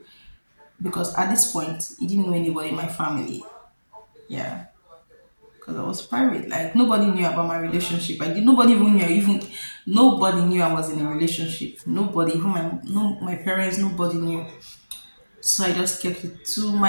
because at this point he didn't know anybody in my family. Yeah, because I was private. Like nobody knew about my relationship. I did. Nobody even knew. Even nobody knew I was in a relationship. Nobody, even my parents. Nobody knew. So I just kept it to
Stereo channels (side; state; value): both; inverted; correlation -1.00